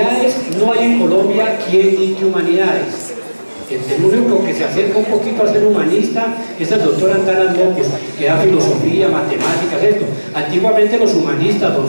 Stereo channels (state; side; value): inverted; both; correlation -1.00